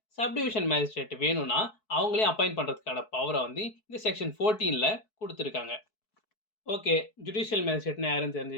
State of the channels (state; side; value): late; right; 4.6 ms